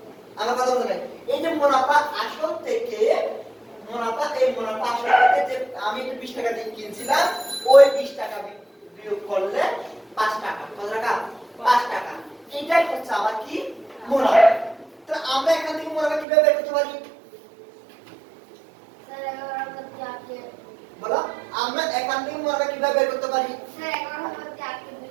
আমার কথা বুঝলেন এই যে মুনাফা আসল থেকে মুনাফা এই মুনাফা আসল থেকে যে আমি 20 টাকা দিয়ে কিনছিলাম ওই 20 টাকা বিয়োগ করলে 5 টাকা কত টাকা 5 টাকা এটাই হচ্ছে আমার কি মুনাফা তো আমরা এখান থেকে মুনাফা কিভাবে বের করতে পারি স্যার 11 প্রতি 8 কে বলো আমরা এখান থেকে মুনাফা কিভাবে বের করতে পারি স্যার 11 প্রতি 8 কে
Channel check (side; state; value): left; drops out; at 16.2 s